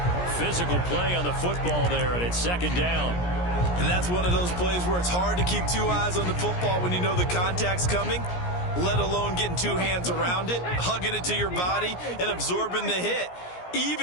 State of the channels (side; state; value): right; late; 17 ms